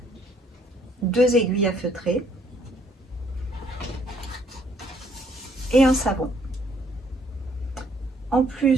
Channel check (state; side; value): normal; both; correlation 0.66